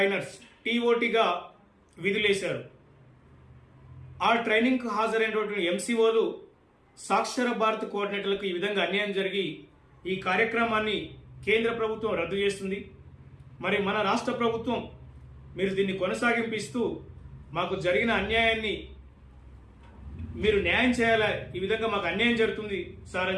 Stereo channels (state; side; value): identical; both; correlation 1.00